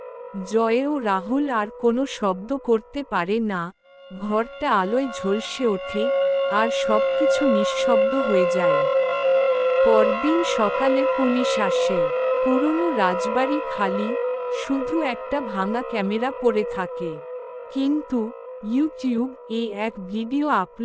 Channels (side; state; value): both; identical; correlation 1.00